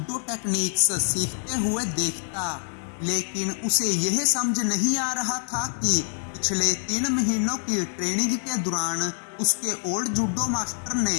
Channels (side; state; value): right; silent; 61 dB below the other